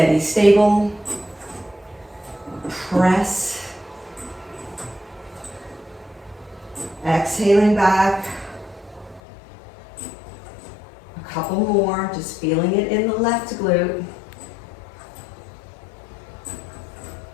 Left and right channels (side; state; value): right; drops out; at 9.2 s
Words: stable, press, exhaling back, a couple more, just feeling it in the left glute.